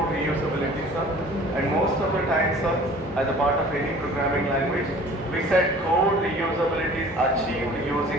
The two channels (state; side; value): normal; both; correlation 0.47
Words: reusability, sir. And most of the time, sir, as a part of any programming language, we said code reusability is achieved